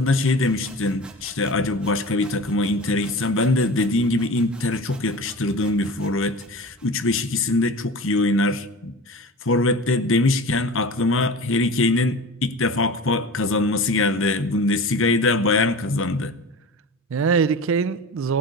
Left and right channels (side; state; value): both; normal; correlation 0.34